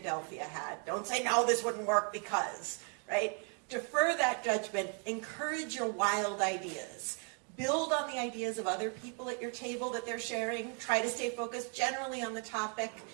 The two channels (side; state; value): left; quieter; 39.2 dB